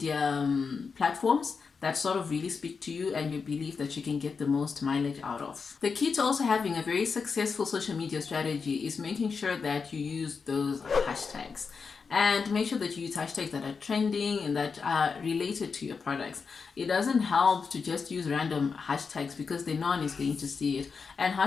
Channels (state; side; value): quieter; right; 5.3 dB